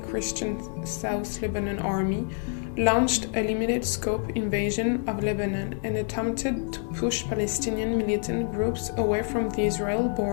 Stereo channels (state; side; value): quieter; right; 39.1 dB